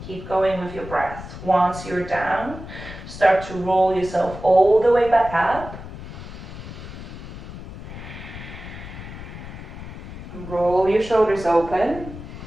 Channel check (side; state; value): left; noise; rumble, 12 dB below the sound